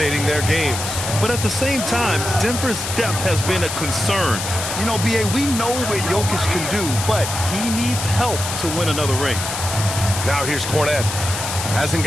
their games. But at the same time, Denver's depth has been a concern. You know, B.A., we know what Jokic can do, but he needs help to win another ring. Now here's Cornette. Hasn't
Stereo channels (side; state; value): left; noise; hiss, 5 dB below the sound